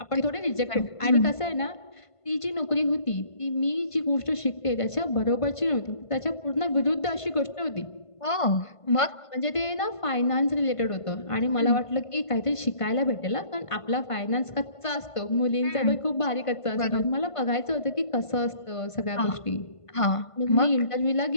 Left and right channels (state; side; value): late; right; 1.5 ms